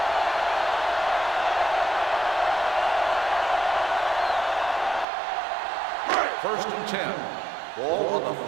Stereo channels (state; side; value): drops out; left; at 5.1 s